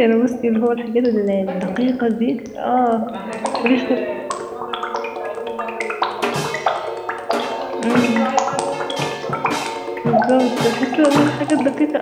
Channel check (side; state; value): both; identical; correlation 1.00